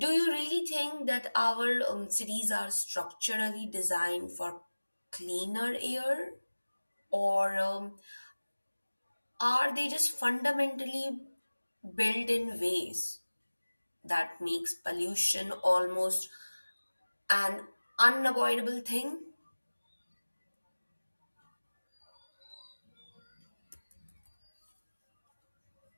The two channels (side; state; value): both; inverted; correlation -1.00